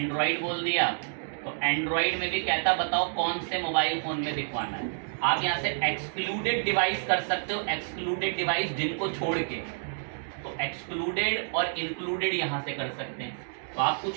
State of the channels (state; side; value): silent; left; digital silence